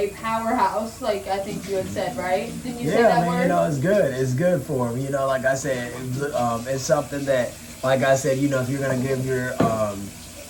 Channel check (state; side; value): identical; both; correlation 1.00